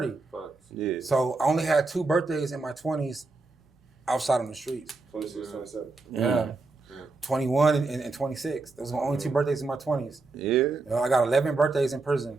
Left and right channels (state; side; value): quieter; left; 3.6 dB